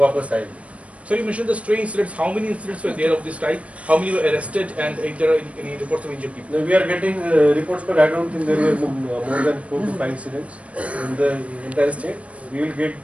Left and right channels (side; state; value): left; late; 0.064 ms